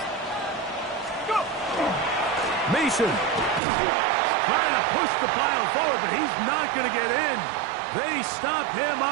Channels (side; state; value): left; drops out; at 3.6 s